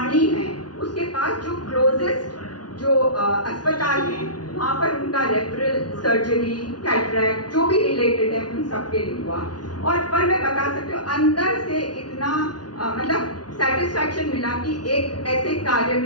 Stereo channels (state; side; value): late; right; 0.69 ms